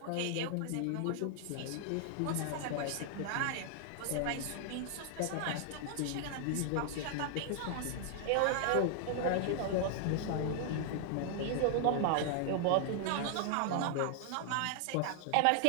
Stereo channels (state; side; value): different; both; correlation 0.00